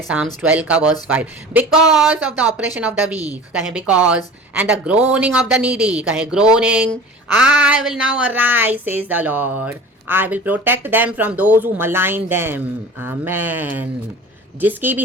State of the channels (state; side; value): normal; both; correlation 0.39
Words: Psalms 12 का verse 5, because of the oppression of the weak, कहे because, and the groaning of the needy, कहे groaning, I will now arise says the Lord, I will protect them from those who malign them. Amen. जिसकी